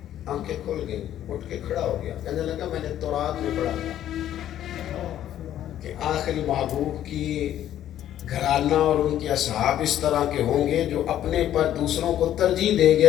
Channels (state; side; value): quieter; right; 11.7 dB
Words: آنکھیں کھل گئی، اٹھ کے کھڑا ہو گیا، کہنے لگا میں نے تورات میں پڑھا تھا کہ آخری محبوب کی گھرانہ اور ان کے اصحاب اس طرح کے ہوں گے جو اپنے پر دوسروں کو ترجیح دیں گے